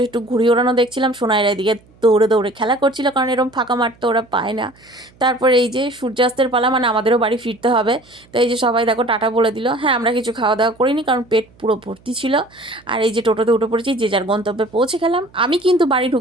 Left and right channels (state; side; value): noise; right; hum, 29 dB below the sound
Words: একটু ঘুড়ি ওড়ানো দেখছিলাম। সোনাইরা এদিকে দৌড়ে দৌড়ে খেলা করছিল, কারণ এরকম ফাঁকা মাঠ তো ওরা পায় না। তারপরে এই যে সূর্যাস্তের পালা, মানে আমাদেরও বাড়ি ফিরতে হবে। তো এই যে সবাই দেখো টাটা বলে দিল। হ্যাঁ, আমরা কিছু খাওয়া দাওয়া করিনি, কারণ পেট পুরো ভর্তি ছিল। আর এই যে টোটোতে উঠে পড়েছি, যে যার গন্তব্যে পৌঁছে গেলাম। আমি কিন্তু বাড়ি